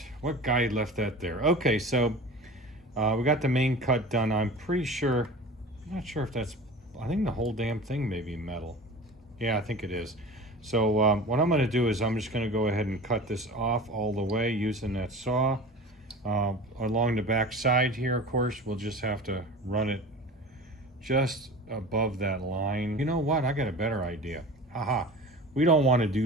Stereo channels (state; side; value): normal; both; correlation 0.36